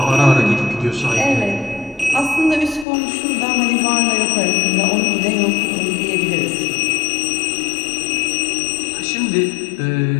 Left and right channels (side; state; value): right; drops out; at 2.9 s